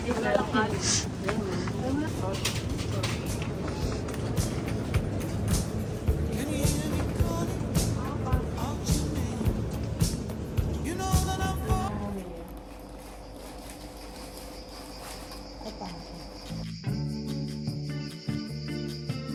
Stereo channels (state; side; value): identical; both; correlation 1.00